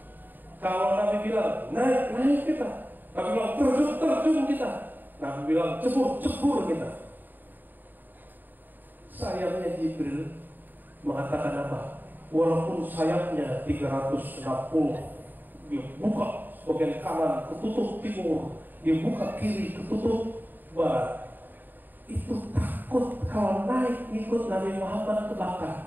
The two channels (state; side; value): late; left; 0.090 ms